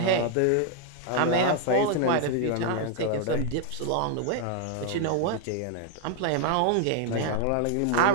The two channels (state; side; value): different; both; correlation 0.00